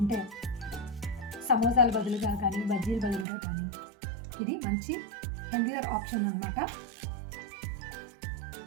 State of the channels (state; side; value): drops out; left; at 3.2 s